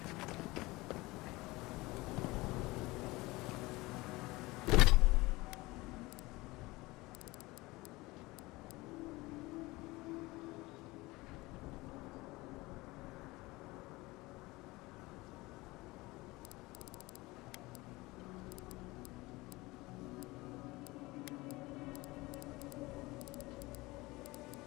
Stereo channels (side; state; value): right; quieter; 21.4 dB